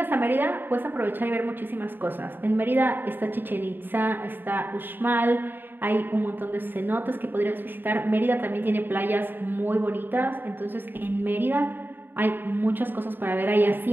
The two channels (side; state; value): left; late; 0.095 ms